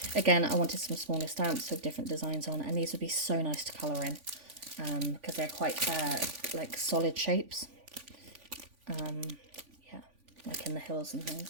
Again, I wanted some smaller stamps with different designs on, and these would be so nice to colour in because they're quite like solid shapes. Yeah, like in the hills and things.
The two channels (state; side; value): late; left; 3.5 ms